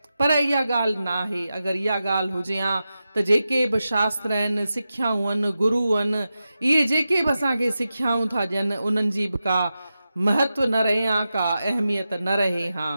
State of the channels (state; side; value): inverted; both; correlation -0.91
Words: पर इहा ॻाल्हि न आहे। अगरि इहा ॻाल्हि हुजे हा त जेके बि शास्त्र आहिनि, सिख्याऊं आहिनि, गुरू आहिनि, इहे जेके बि असांखे सिख्याऊं था ॾियनि, उन्हनि जी बि का महत्व न रहे हा, का अहमियत न रहे हा।